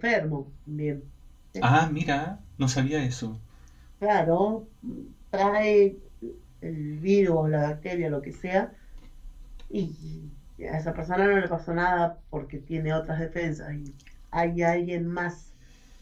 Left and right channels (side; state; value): both; identical; correlation 1.00